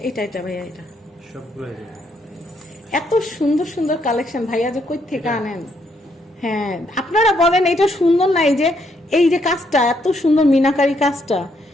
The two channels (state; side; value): normal; both; correlation 0.73